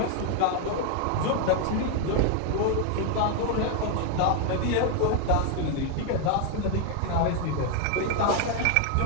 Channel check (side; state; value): both; different; correlation 0.00